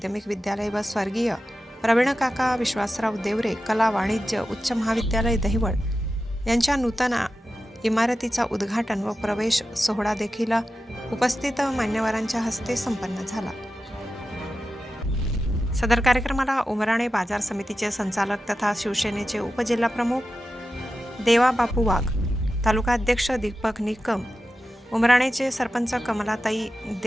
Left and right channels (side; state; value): both; normal; correlation 0.92